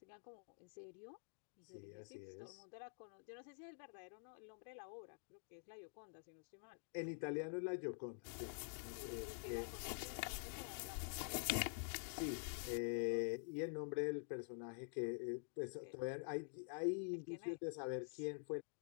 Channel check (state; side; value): silent; right; digital silence